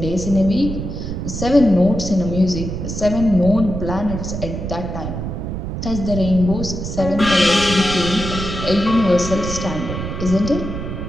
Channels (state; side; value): noise; right; rumble, 5 dB below the sound